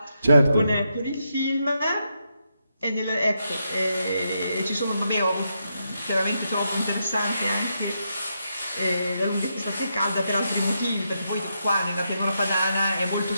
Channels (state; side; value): inverted; both; correlation -0.83